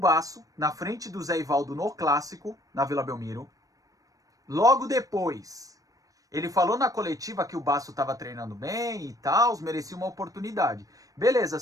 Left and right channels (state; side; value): late; left; 0.17 ms